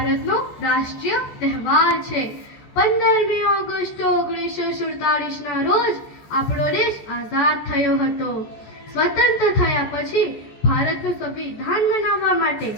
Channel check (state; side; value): late; right; 14 ms